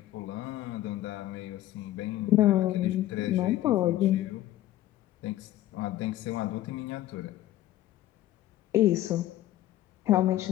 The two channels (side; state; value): right; quieter; 14.4 dB